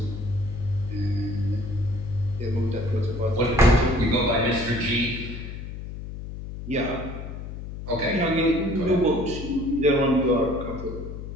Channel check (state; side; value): noise; left; hum, 9 dB below the sound